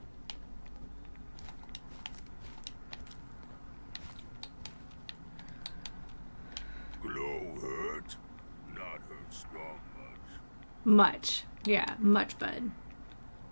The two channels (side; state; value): both; inverted; correlation -1.00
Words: Glow hurt? Not hurt strong much. Much. Yeah, much, bud.